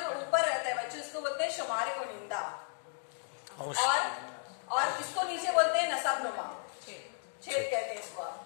ऊपर रहता है बच्चों, इसको बोलते हैं शुमारे को निंदा, और इसको नीचे बोलते हैं नसबनुमा, छेद कहते हैं इसको।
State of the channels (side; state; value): right; silent; digital silence